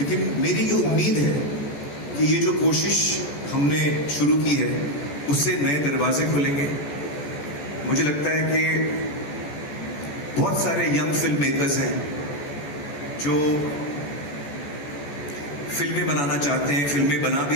मेरी ये उम्मीद है कि ये जो कोशिश हमने शुरू की है उससे नए दरवाजे खुलेंगे। मुझे लगता है कि बहुत सारे यंग फिल्म मेकर्स हैं जो फिल्में बनाना चाहते हैं, फिल्में बना भी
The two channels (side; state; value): right; late; 14 ms